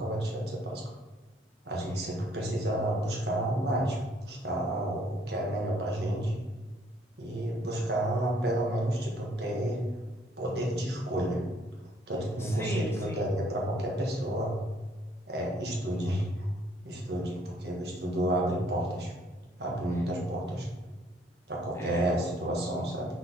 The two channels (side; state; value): both; normal; correlation 0.64